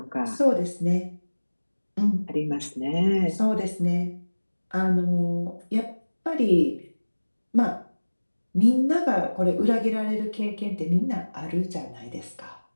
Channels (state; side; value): inverted; both; correlation -1.00